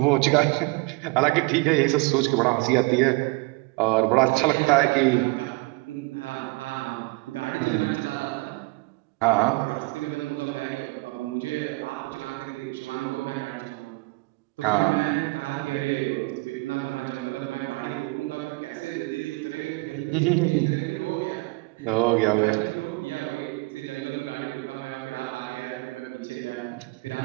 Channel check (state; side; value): quieter; left; 26.3 dB